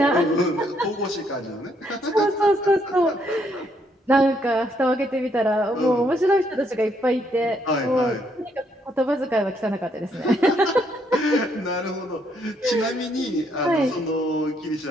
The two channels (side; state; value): both; normal; correlation 0.72